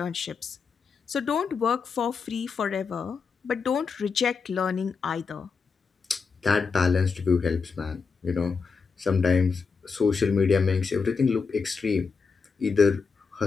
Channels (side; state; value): right; quieter; 5.2 dB